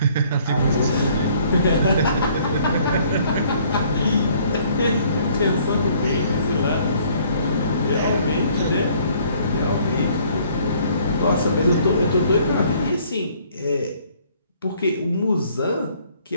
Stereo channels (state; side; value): inverted; both; correlation -0.60